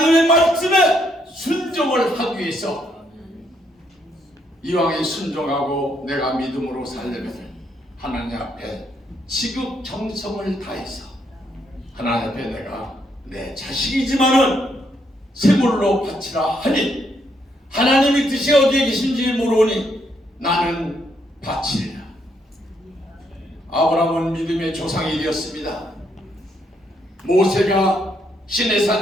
말씀에 순종을 하기 위해서 이왕에 순종하고 내가 믿음으로 살려면 하나님 앞에 지극정성을 다해서 하나님 앞에 내가 내 자식이지만은 세물로 바치라 하니 하나님의 뜻이 어디에 계신지 모르니 나는 바치리라. 아브라함은 믿음의 조상이 되었습니다. 모세가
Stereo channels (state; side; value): normal; both; correlation 0.74